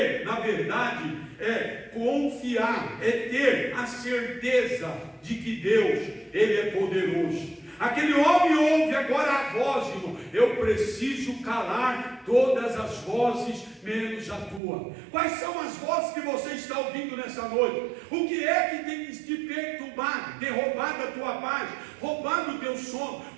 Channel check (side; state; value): left; drops out; at 14.6 s